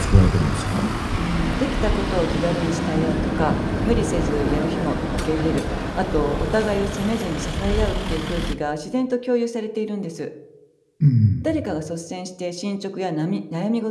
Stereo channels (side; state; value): both; identical; correlation 1.00